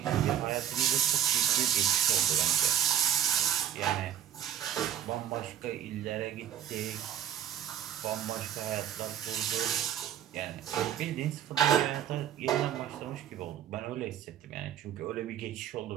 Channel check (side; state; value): left; quieter; 10.1 dB